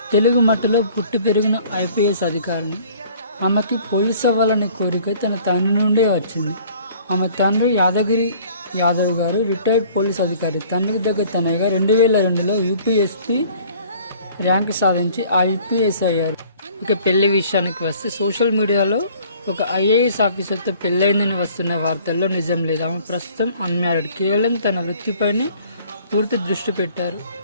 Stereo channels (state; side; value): inverted; both; correlation -0.54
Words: తెలుగు మట్టిలో పుట్టి పెరిగిన ఐపీఎస్ అధికారిని. ఆమెకి పోలీస్ అవ్వాలనే కోరిక తన తండ్రి నుండే వచ్చింది. ఆమె తండ్రి యాదగిరి యాదవ్ గారు రిటైర్డ్ పోలీస్ అధికారి. తండ్రికి దగ్గర తనయ్యగా 2002లో యూపీఎస్పీ ర్యాంక్ సాధించి ఐపీఎస్ అయ్యారు. ఇక పెళ్లి విషయానికి వస్తే సోషల్ మీడియాలో ఒక ఐఏఎస్ ఆఫీసర్తో పెళ్ళైందని వస్తున్న వార్తల్లో నిజం లేదు. ఆమె ప్రస్తుతం అన్మ్యారీడ్. కేవలం తన వృత్తిపైనే పూర్తి దృష్టి పెట్టారు.